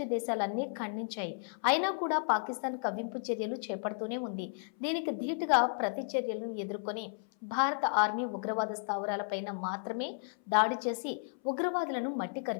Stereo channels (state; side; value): silent; right; 55 dB below the other